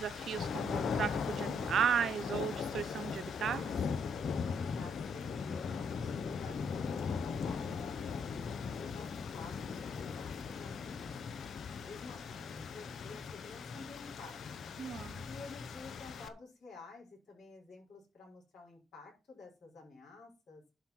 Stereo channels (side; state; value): both; normal; correlation 0.72